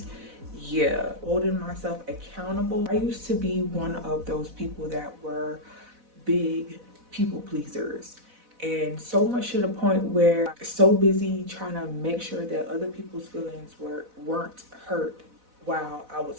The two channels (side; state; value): left; late; 4.0 ms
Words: Holding myself accountable. I used to be one of those people that were big people pleasers, and so much to the point where I'm so busy trying to make sure that other people's feelings weren't hurt while I